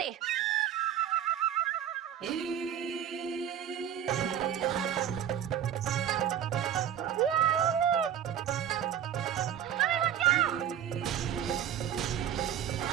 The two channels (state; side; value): quieter; left; 9.8 dB